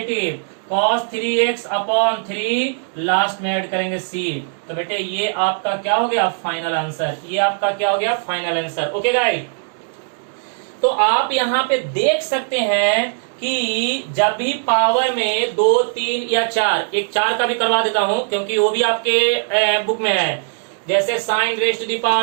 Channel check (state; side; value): silent; left; digital silence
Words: cos 3x upon 3 last में ऐड करेंगे c। तो बेटे ये आपका क्या हो गया फाइनल आंसर, ये आपका क्या हो गया फाइनल आंसर। ओके गाइस, तो आप यहाँ पे देख सकते हैं कि जब भी पावर में 2, 3 या 4, एक 4 का भी करवा देता हूं क्योंकि वो भी आपके बुक में है, जैसे sine raise to the